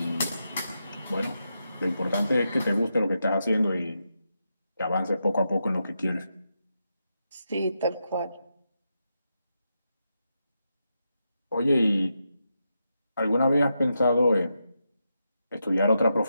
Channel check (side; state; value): both; inverted; correlation -0.85